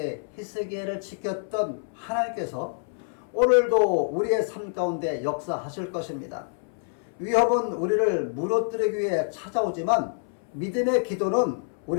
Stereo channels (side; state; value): right; silent; 60 dB below the other